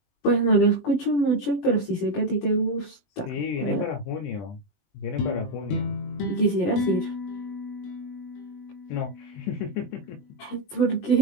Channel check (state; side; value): late; right; 20 ms